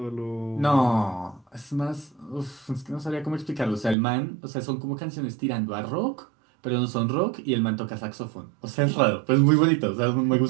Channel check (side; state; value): left; drops out; at 4.0 s